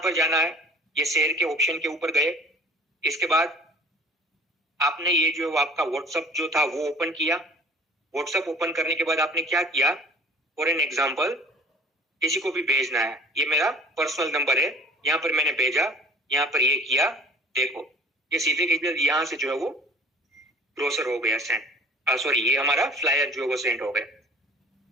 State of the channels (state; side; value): normal; both; correlation 0.46